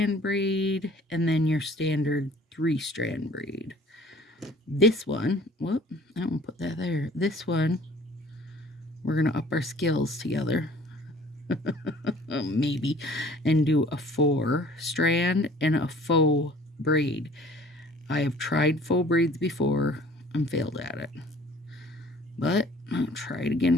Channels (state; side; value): normal; both; correlation 0.52